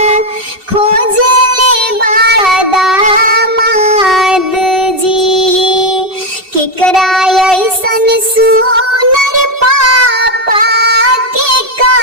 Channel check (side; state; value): left; late; 2.7 ms